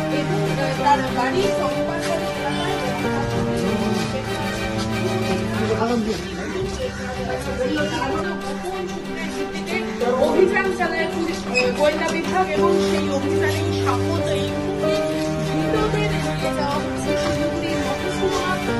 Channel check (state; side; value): identical; both; correlation 1.00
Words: এবং তার বাড়ি সম্পাদন অভিযান চালায় পুলিশ গোয়েন্দা বিভাগ এবং সেই অভিযানে সাপোর্ট এই ধৃতদের নিয়ে যাওয়া হচ্ছে শিলিগুড়ির মহকুমা